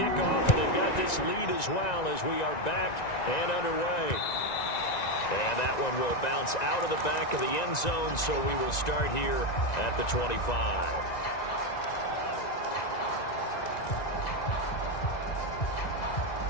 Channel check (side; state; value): right; late; 1.9 ms